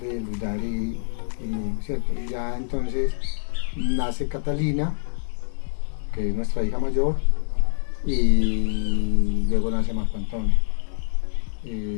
Luz Dari, ¿cierto? Y ya entonces nace Catalina, que es nuestra hija mayor, y luego nace Marco Antonio.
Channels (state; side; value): silent; right; digital silence